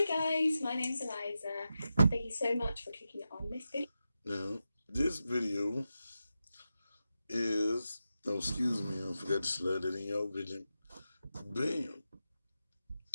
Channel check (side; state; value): both; inverted; correlation -0.90